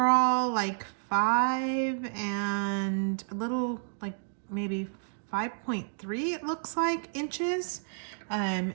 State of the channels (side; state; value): left; silent; digital silence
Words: like 5 and a little, like maybe 5.3 it looks like inches.